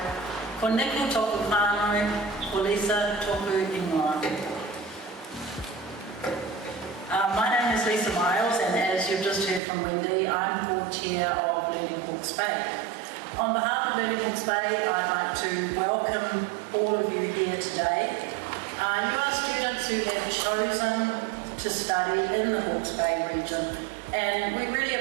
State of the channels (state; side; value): drops out; left; at 9.6 s